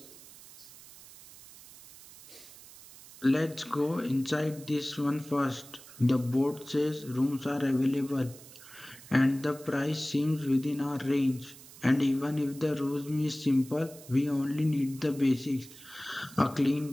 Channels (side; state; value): right; noise; hiss, 19 dB below the sound